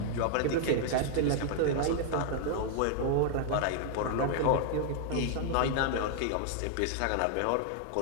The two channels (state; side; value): different; both; correlation -0.01